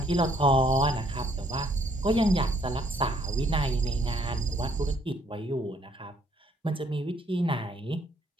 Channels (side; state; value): both; normal; correlation 0.67